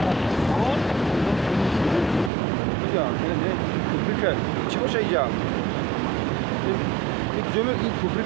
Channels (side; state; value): left; drops out; at 2.3 s